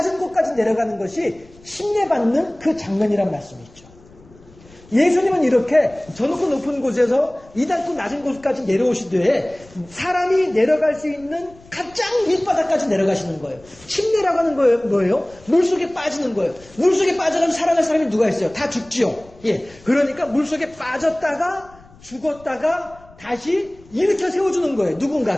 곳까지 내려가는 것이 침례받는 그 장면이란 말씀이죠. 예수님은 이렇게 저 높고 높은 곳에서 이 낮고 낮은 곳까지 내려오시되 사람이 내려갈 수 있는 가장 밑바닥까지 내려가시는 거예요. 침례라고 하는 거예요. 뭐예요? 물속에 빠지는 거예요. 물속에 빠져가면 살아날 사람이 누가 있어요? 다 죽지요. 예. 그러니까 물속에 빠졌다가 죽었다가 다시 일으켜 세워주는 거예요.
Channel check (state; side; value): noise; left; rumble, 25 dB below the sound